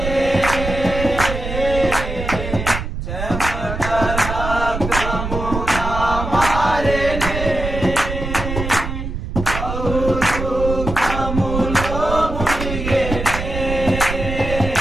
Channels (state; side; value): noise; right; rumble, 5 dB below the sound